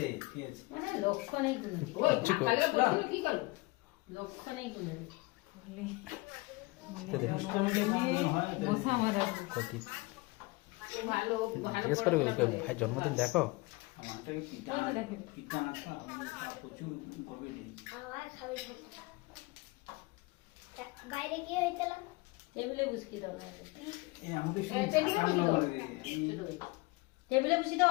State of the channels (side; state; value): right; quieter; 23.5 dB